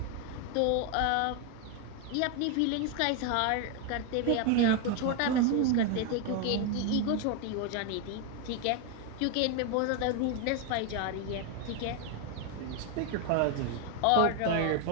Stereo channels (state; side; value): different; both; correlation 0.01